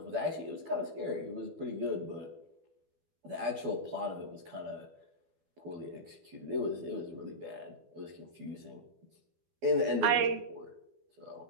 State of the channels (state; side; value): late; left; 12 ms